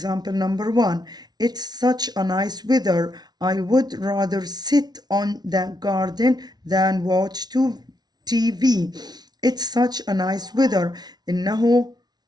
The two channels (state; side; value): late; left; 0.19 ms